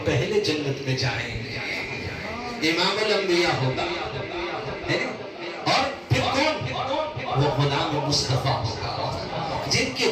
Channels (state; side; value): identical; both; correlation 1.00